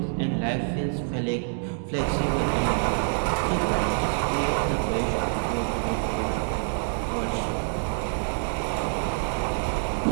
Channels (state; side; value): silent; left; 61 dB below the other